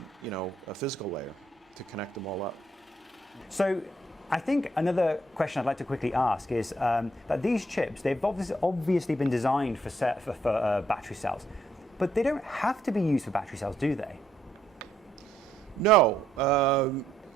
physical layer to connect them all up. So I think another question I'd like to quickly ask is that these chips, they've obviously been designed for battery cells, but they don't have to be used for battery cells, do they? No.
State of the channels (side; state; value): both; normal; correlation 0.72